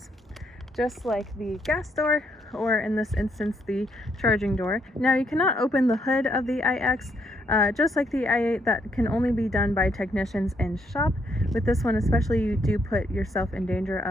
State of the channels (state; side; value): normal; both; correlation 0.74